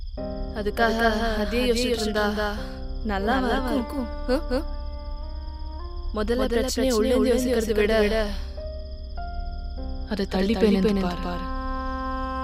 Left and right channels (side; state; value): both; identical; correlation 1.00